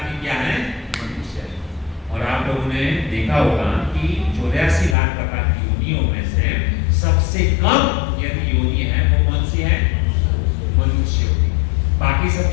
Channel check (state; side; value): drops out; right; at 5.0 s